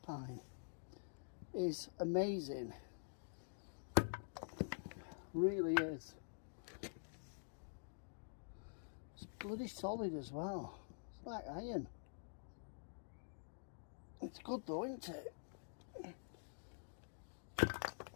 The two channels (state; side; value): silent; right; digital silence